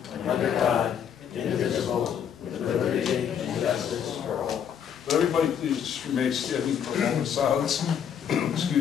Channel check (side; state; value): right; quieter; 8.4 dB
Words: under God, indivisible, with liberty and justice for all. But everybody please just remain standing for a moment of silence.